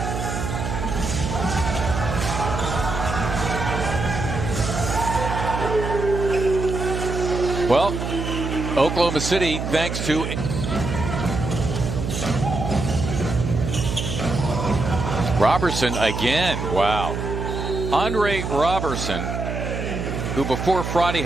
Well, Oklahoma City, thanks to Robertson again. Wow. Andre Robertson, who before Friday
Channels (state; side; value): noise; right; hum, 4 dB below the sound